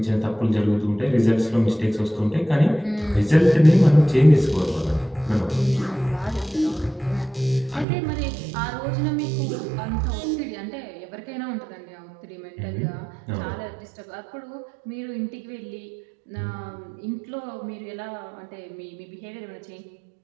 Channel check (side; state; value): left; drops out; at 7.9 s